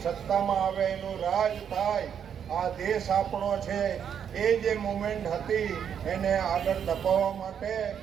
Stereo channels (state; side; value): quieter; left; 8.2 dB